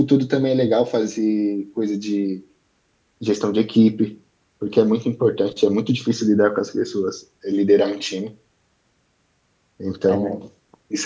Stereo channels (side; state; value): both; identical; correlation 1.00